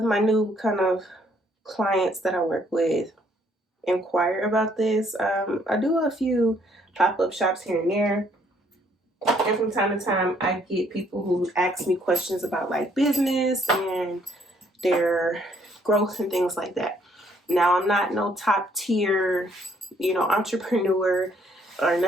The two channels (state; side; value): normal; both; correlation 0.66